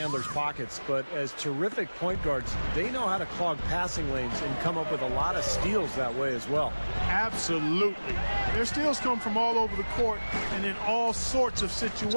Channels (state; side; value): inverted; both; correlation -1.00